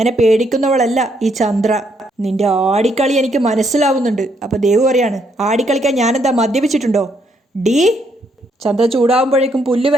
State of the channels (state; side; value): normal; both; correlation 0.73